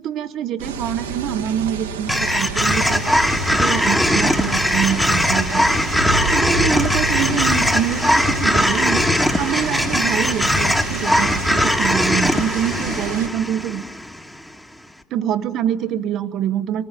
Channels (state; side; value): normal; both; correlation 0.73